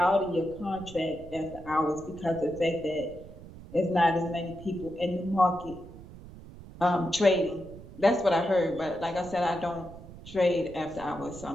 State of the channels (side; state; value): right; noise; rumble, 16 dB below the sound